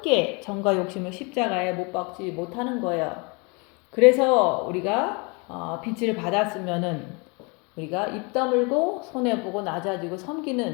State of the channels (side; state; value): right; quieter; 30.7 dB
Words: 정과 욕심을 십자가에 못 박지 못하는 거예요. 그래서 우리가 빛을 받았으면은 우리가 입 다물고 손해보고 낮아지고